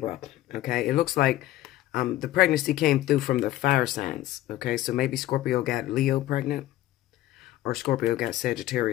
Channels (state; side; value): quieter; right; 14.7 dB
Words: Okay. It looks like the pregnancy came through from the fire signs. Okay. So maybe Scorpio got Leo pregnant. Or Scorpio got